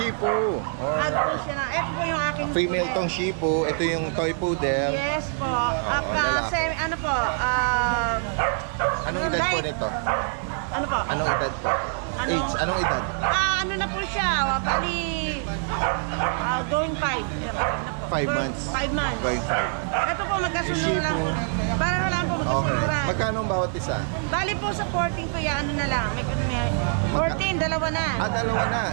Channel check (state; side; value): silent; left; 62 dB below the other